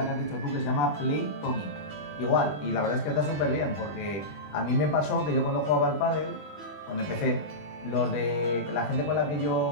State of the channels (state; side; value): late; right; 20 ms